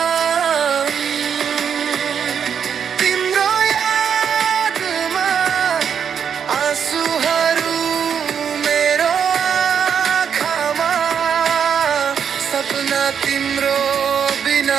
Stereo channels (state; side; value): quieter; left; 7.6 dB